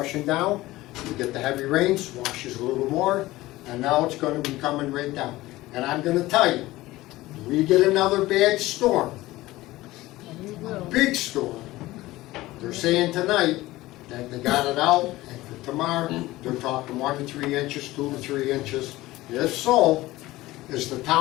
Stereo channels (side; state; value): right; quieter; 18.0 dB